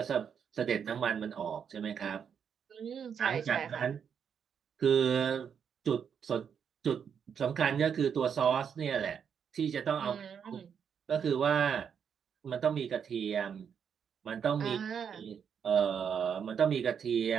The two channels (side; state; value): left; quieter; 7.4 dB